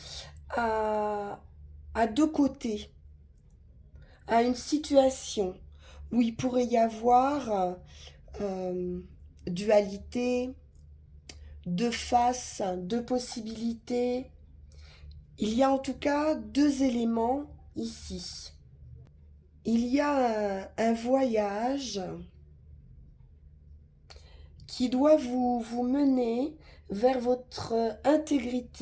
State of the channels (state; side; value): identical; both; correlation 1.00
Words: à, à deux côtés, à une situation où il pourrait y avoir euh, dualité, deux faces, deux possibilités. Il y a en tout cas deux éléments ici. Il y a un voyage qui doit vous mener vers votre